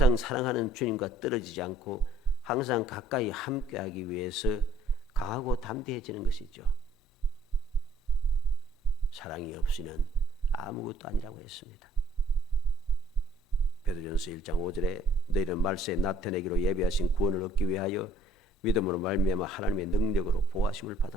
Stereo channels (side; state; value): both; normal; correlation 0.61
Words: 사랑하는 주님과 떨어지지 않고 항상 가까이 함께하기 위해서 강하고 담대해지는 것이죠. 사랑이 없이는 아무것도 아니라고 했습니다. 베드로전서 1장 5절에 너희는 말세에 나타내기로 예비하신 구원을 얻기 위하여 믿음으로 말미암아 하나님의 능력으로 보호하심을